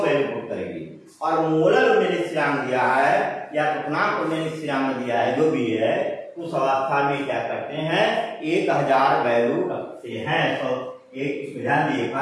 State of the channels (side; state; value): both; identical; correlation 1.00